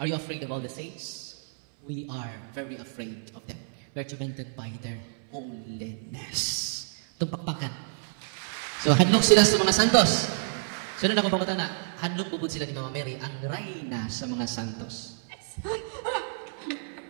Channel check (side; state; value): left; silent; 59 dB below the other